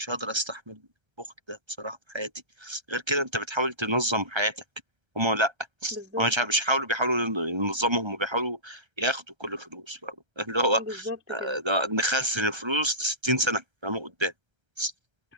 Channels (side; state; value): left; late; 1.3 ms